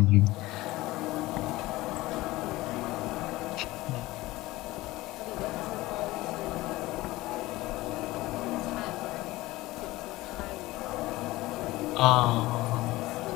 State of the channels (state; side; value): quieter; right; 18.7 dB